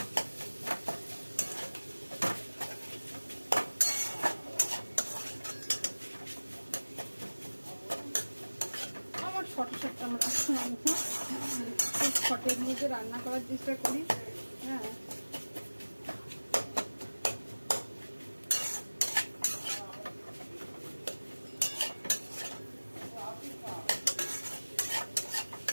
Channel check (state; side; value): inverted; both; correlation -1.00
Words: শর্টে আমরা শর্টের মধ্যে রান্না করার চেষ্টা করি। হ্যাঁ,